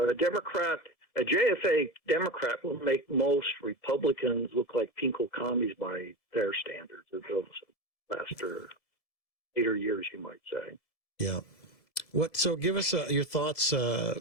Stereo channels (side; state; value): right; late; 2.0 ms